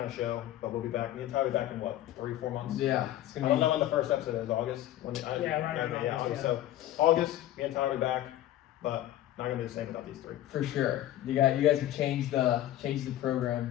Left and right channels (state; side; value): quieter; right; 13.5 dB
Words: of show, but we'll be back. Me and Tyler will be back in, 3-4 months? Yeah. It's I gonna don't be... know when the first episode is. August? August, August. So, August, me and Tyler will be back, but not going to be the same without these 3. For sure. You guys have changed the